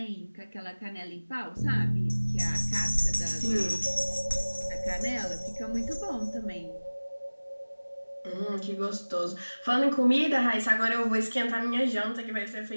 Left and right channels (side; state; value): both; inverted; correlation -1.00